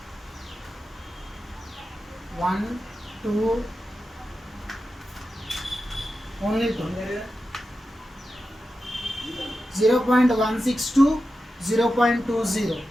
1, 2, only 2. 0.162, 0.20,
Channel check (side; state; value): both; normal; correlation 0.91